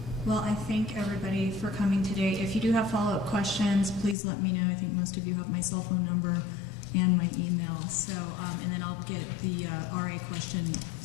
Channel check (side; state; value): right; drops out; at 4.2 s